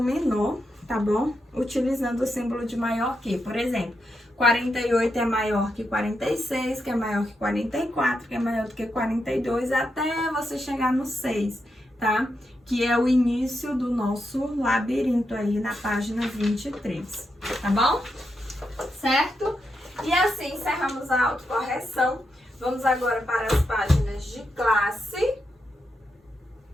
menor, tá bom? Utilizando o símbolo de maior que. Por exemplo, 48 é maior que 46, que é maior que 44, que é maior do que 42, até você chegar no 6, tá? Que é o início do nosso labirinto aí na página 23, tá bom? Certo? E assim encerramos a autocorreção. Vamos agora para as páginas de classe.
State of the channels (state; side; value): normal; both; correlation 0.84